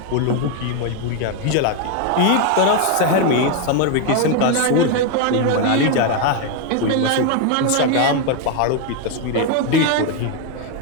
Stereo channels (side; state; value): both; different; correlation 0.01